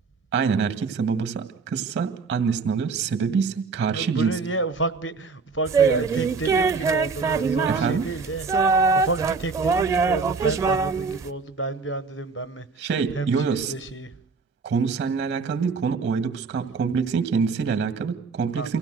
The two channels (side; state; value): left; quieter; 4.7 dB